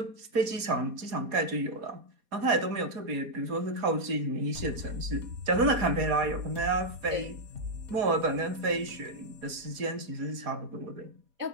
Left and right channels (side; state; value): left; late; 4.2 ms